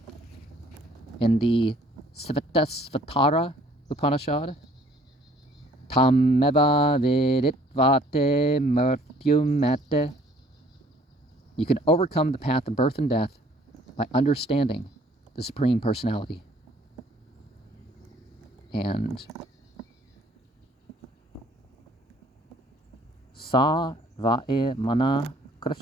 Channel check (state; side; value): normal; both; correlation 0.58